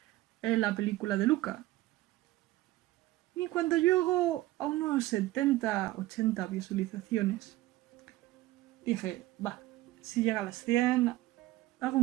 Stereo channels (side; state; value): left; quieter; 16.9 dB